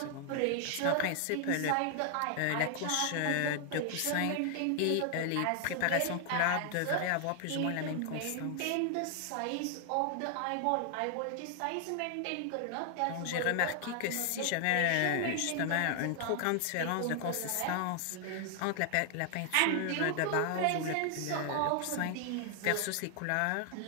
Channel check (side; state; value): both; different; correlation 0.00